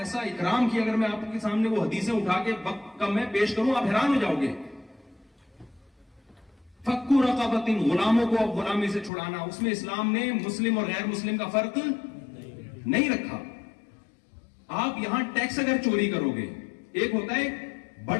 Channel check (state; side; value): drops out; right; at 9.1 s